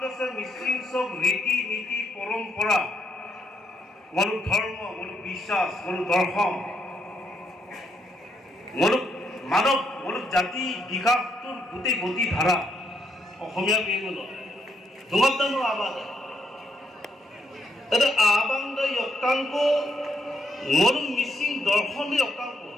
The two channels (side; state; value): both; normal; correlation 0.76